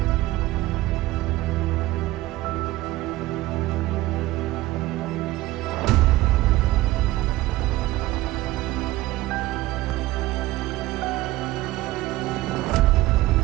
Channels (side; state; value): left; quieter; 17.4 dB